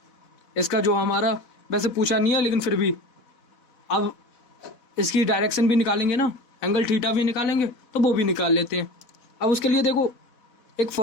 इसका जो हमारा, वैसे पूछा नहीं है लेकिन फिर भी अब इसकी डायरेक्शन भी निकालेंगे ना, एंगल थीटा भी निकालेंगे, तो वो भी निकाल लेते हैं। अब उसके लिए देखो एक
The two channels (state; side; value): late; right; 4.0 ms